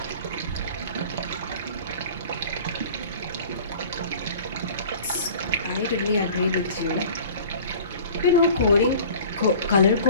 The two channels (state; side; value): inverted; both; correlation -0.44